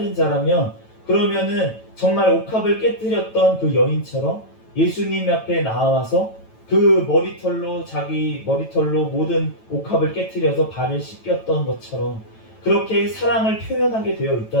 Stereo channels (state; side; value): late; right; 9.1 ms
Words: 자라면 그러면은 정말 옥합을 깨뜨렸던 그 여인처럼 예수님 앞에 나와서 그 자기 머리털로 모든 옥합을 깨뜨려서 발을 씻겼던 것처럼 그렇게 사랑을 표현하게 되어